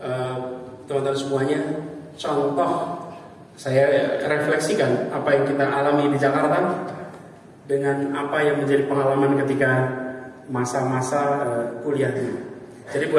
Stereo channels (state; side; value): identical; both; correlation 1.00